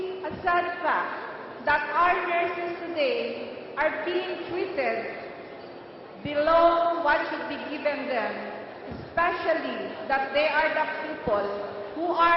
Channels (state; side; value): identical; both; correlation 1.00